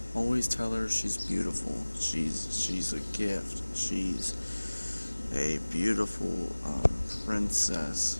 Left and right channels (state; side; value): inverted; both; correlation -1.00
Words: Always tell her she's beautiful. She's a gift. She's a beautiful princess.